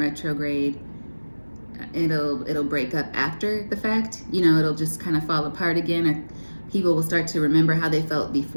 it'll break up after the fact. You know, it'll just kind of fall apart again, or people will start to remember how they felt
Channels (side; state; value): both; inverted; correlation -1.00